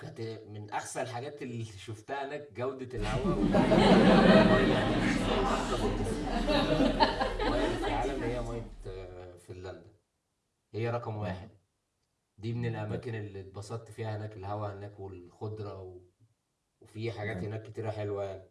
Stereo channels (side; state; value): both; identical; correlation 1.00